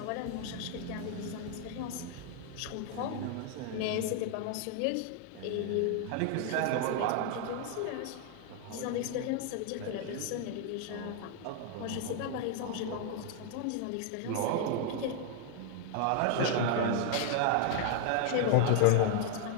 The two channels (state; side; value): different; both; correlation 0.00